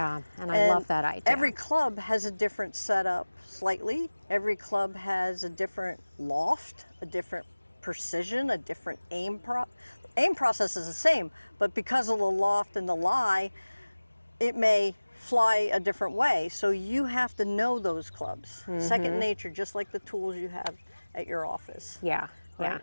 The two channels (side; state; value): both; inverted; correlation -1.00